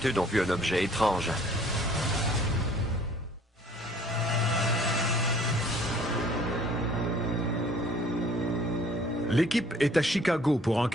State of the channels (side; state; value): both; normal; correlation 0.55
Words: ont vu un objet étrange. L'équipe est à Chicago pour